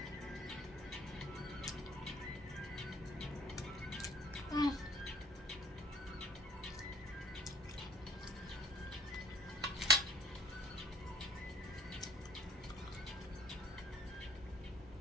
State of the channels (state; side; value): normal; both; correlation 0.56